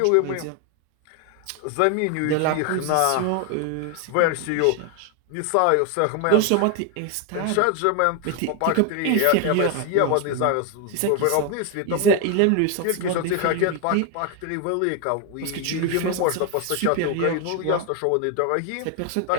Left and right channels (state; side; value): different; both; correlation 0.01